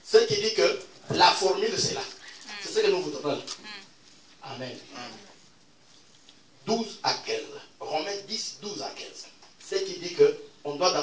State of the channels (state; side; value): identical; both; correlation 1.00